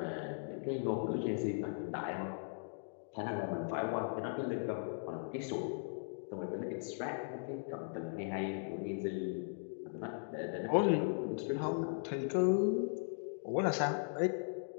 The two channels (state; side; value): silent; right; digital silence